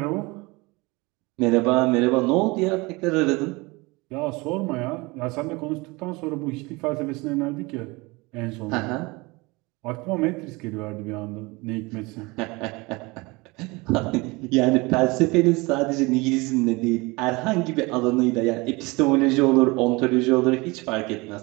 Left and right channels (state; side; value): quieter; left; 24.7 dB